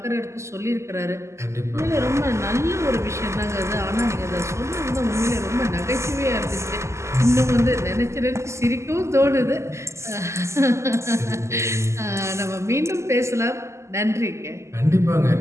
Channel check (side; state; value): left; late; 0.13 ms